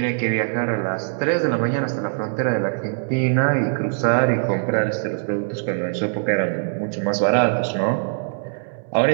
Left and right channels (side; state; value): left; silent; 64 dB below the other